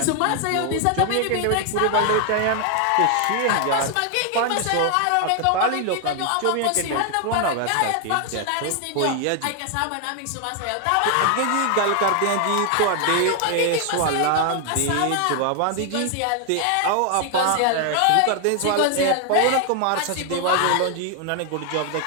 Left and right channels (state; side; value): different; both; correlation 0.00